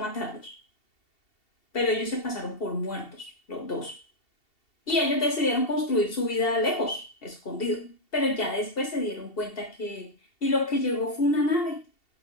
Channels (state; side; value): late; right; 2.7 ms